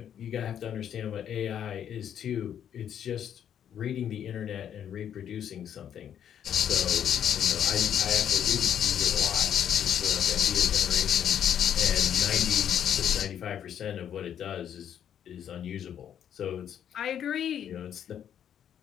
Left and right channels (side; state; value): right; quieter; 9.4 dB